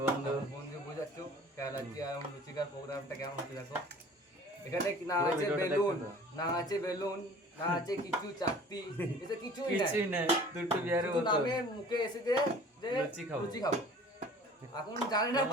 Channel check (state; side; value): normal; both; correlation 0.47